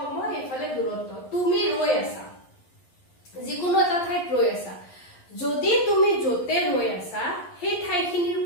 এফালে দূৰত্ব তুমি ৰৈ আছা যিকোনো এটা ঠাইত ৰৈ আছা যদি তুমি যতে ৰৈ আছা সেই ঠাইখিনিৰ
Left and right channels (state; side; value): late; right; 11 ms